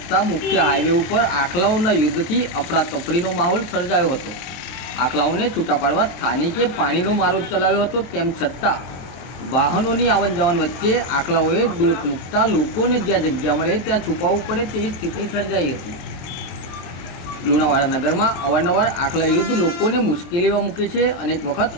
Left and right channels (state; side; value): late; right; 23 ms